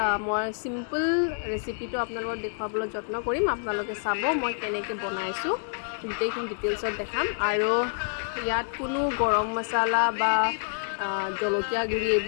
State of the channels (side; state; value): right; silent; digital silence